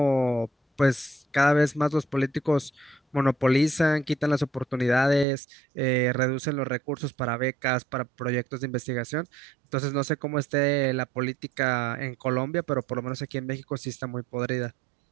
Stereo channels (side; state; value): left; drops out; at 5.2 s